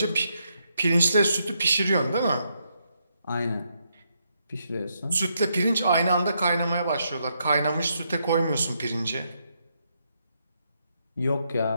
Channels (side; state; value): both; inverted; correlation -0.79